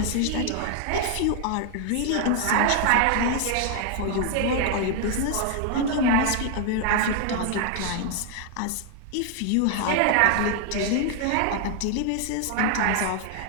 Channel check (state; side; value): different; both; correlation 0.00